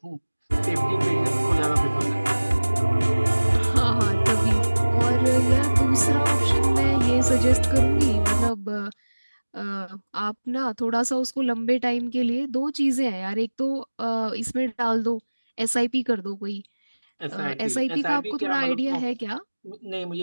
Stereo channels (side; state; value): both; inverted; correlation -1.00